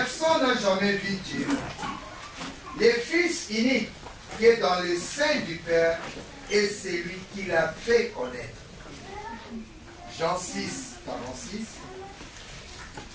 n'a jamais vu Dieu. Le Fils unique qui est dans le sein du Père est celui qui l'a fait connaître. Jean 6, 46.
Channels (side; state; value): both; identical; correlation 1.00